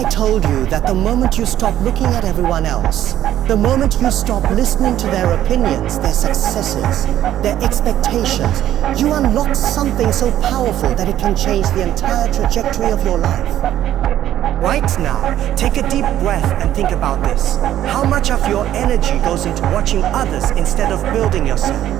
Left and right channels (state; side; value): quieter; left; 12.1 dB